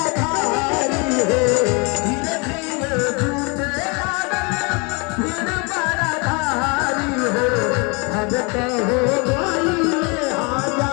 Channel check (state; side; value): quieter; right; 30.9 dB